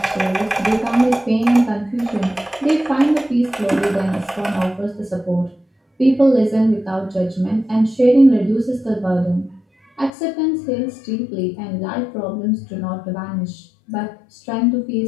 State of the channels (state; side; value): drops out; right; at 10.1 s